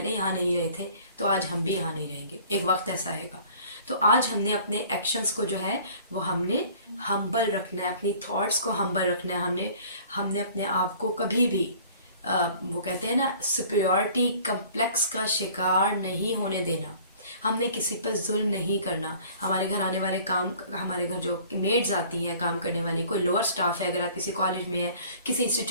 यहाँ नहीं रहे थे तो आज हम भी यहाँ नहीं रहेंगे, एक वक्त ऐसा आएगा। तो आज हमने अपने एक्शंस को जो है वो हमने हम्बल रखना है, अपनी थॉट्स को हम्बल रखना है, हमने अपने आप को कभी भी वो कहते हैं ना सुपीरियॉरिटी कम्प्लेक्स का शिकार नहीं होने देना। हमने किसी पर जुल्म नहीं करना। हमारे घर आने वाले हमारे घर जो मेड्स आती हैं काम करने वाली, कोई लोअर स्टाफ है, अगर आप किसी कॉलेज में है, किसी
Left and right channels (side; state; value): both; inverted; correlation -0.51